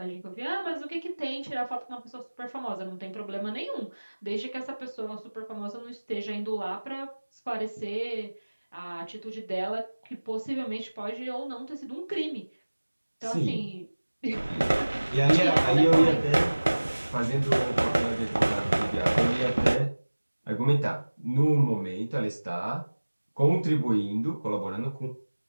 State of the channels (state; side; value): inverted; both; correlation -1.00